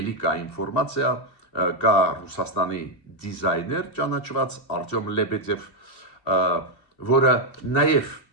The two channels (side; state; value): right; late; 2.7 ms